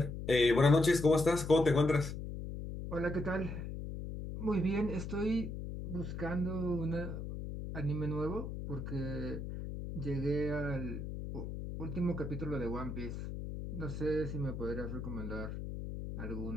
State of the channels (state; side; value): noise; left; hum, 6 dB below the sound